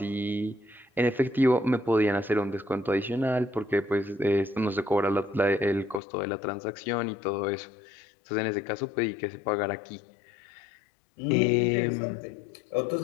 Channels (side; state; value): right; drops out; at 6.0 s